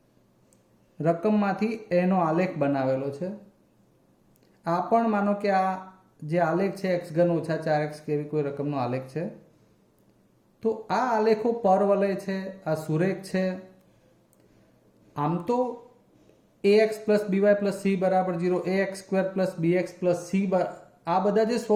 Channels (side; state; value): both; identical; correlation 1.00